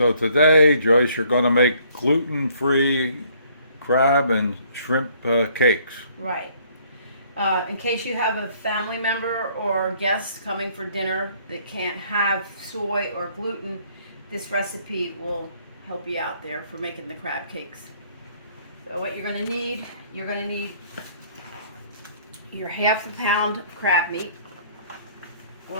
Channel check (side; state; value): both; inverted; correlation -0.62